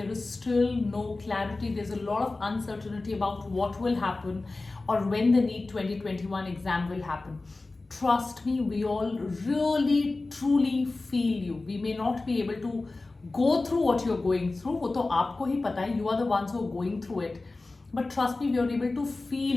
is still no clarity. There's a lot of uncertainty about what will happen or when the NEET 2021 exam will happen. Trust me, we all really truly feel you. We may not be able to go through what you're going through, वो तो आपको ही पता है, you are the ones who are going through it. But trust me, we are able to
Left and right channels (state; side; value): quieter; right; 3.3 dB